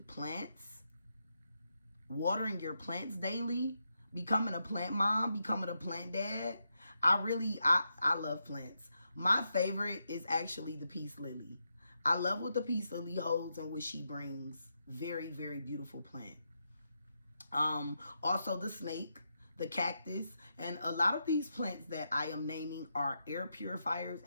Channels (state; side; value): inverted; both; correlation -0.84